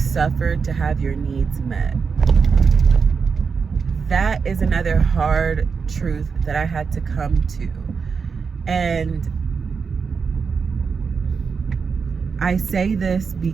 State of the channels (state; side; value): quieter; left; 5.5 dB